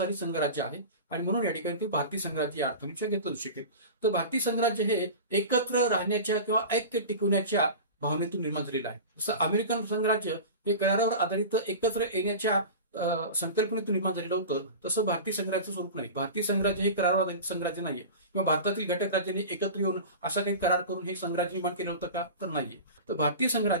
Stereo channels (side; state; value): both; inverted; correlation -0.32